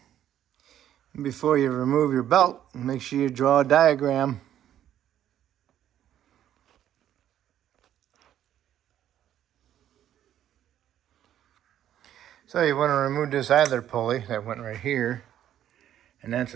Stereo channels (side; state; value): left; quieter; 11.1 dB